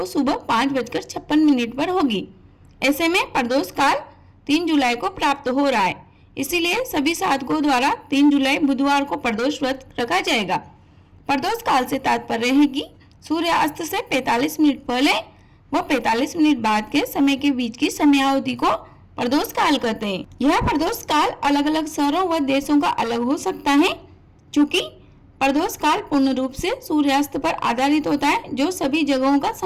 सुबह 5:56 पर होगी। ऐसे में प्रदोष काल 3 जुलाई को प्राप्त हो रहा है, इसीलिए सभी साधकों द्वारा 3 जुलाई बुधवार को प्रदोष व्रत रखा जाएगा। प्रदोष काल से तात्पर्य है कि सूर्यास्त से 45 मिनट पहले व 45 मिनट बाद के समय के बीच की समयावधि को प्रदोष काल कहते हैं। यह प्रदोष काल अलग अलग शहरों व देशों का अलग हो सकता है, चूँकि प्रदोष काल पूर्ण रूप से सूर्यास्त पर आधारित होता है, जो सभी जगहों का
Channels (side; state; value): both; identical; correlation 1.00